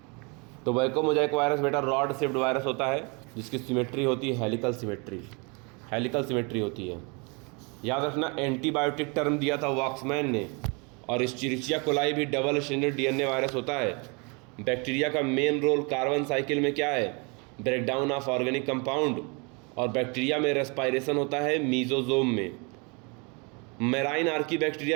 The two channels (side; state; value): left; quieter; 31.5 dB